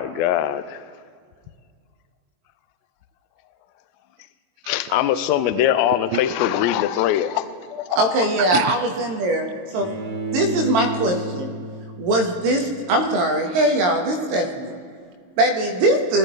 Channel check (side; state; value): left; late; 22 ms